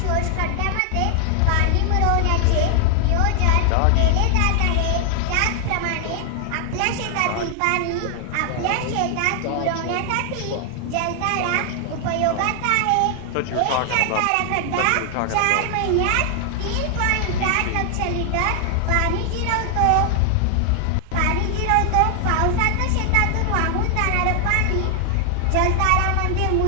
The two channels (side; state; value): both; different; correlation 0.00